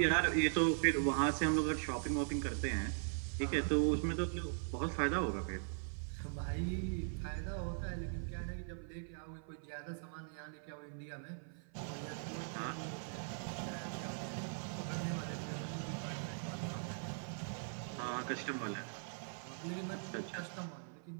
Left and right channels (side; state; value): left; silent; 51 dB below the other